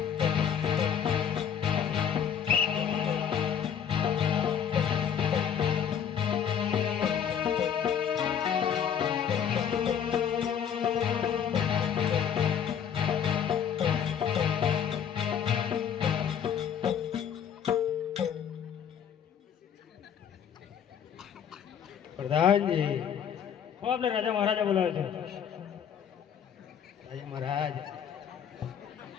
પ્રધાનજી હો આપણે રાજા મહારાજા બોલાવે છે. રાજા મહારાજ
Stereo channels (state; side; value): quieter; right; 8.3 dB